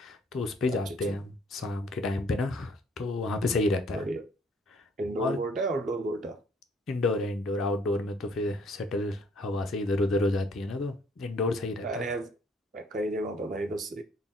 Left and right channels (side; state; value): both; normal; correlation 0.61